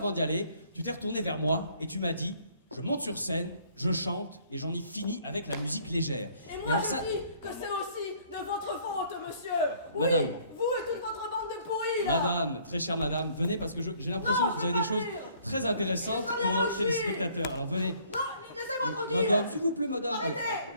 d'y aller, tu t'es retourné vers moi et tu m'as dit je monte sur scène, je chante et j'en ai fini avec la musique légère. Et moi, alors je dis que c'est aussi de votre faute, monsieur. Oui, Madame. Vous et toute votre bande de pourris, là. Madame, très chère madame, venez parce que j'ai l'impression Non, que vous avez des je veux choses pas venir. très intéressantes Je veux pour bien nos où je suis. téléspectateurs. Alors venez. Non, laissez-moi tranquille. Madame, s'il vous plaît, madame. Arrêtez.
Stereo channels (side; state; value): both; inverted; correlation -0.60